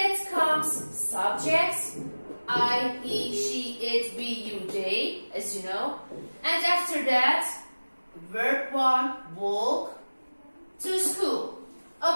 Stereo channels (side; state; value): both; inverted; correlation -1.00